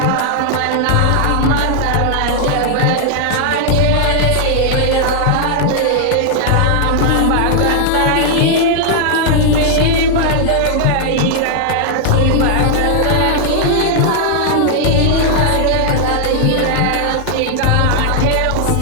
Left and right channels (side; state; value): both; different; correlation -0.01